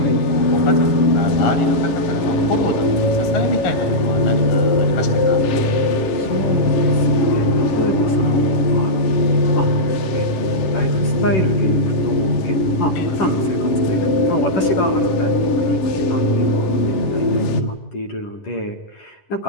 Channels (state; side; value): late; right; 10 ms